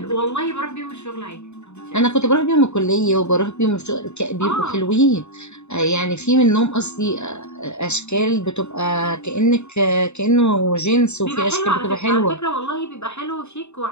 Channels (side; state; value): right; late; 0.82 ms